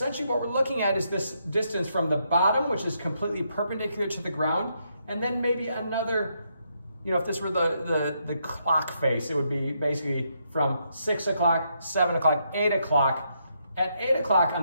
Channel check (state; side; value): inverted; both; correlation -0.77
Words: what we're looking at is this distance from the bottom, which is completely perpendicular to the ground, and then maybe another, you know, if this were the clock face, it would be basically from 6 o'clock, 7 o'clock, 8 o'clock. At 8 o'clock